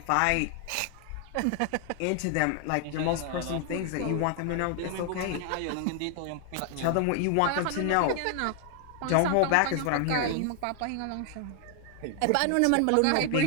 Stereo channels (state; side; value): different; both; correlation 0.00